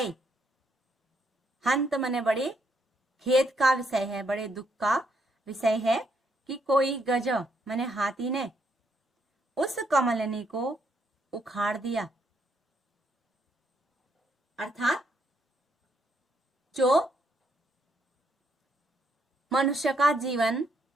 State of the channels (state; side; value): normal; both; correlation 0.74